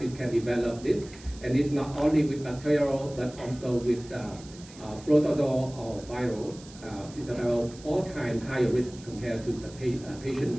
can develop this, and it's not only with bacterial but also with protozoal or viral. It's about 4 times higher risk compared to the patient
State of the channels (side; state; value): right; noise; hiss, 20 dB below the sound